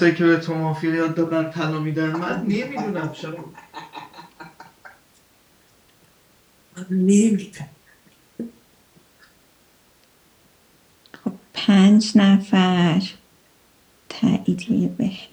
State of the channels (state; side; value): identical; both; correlation 1.00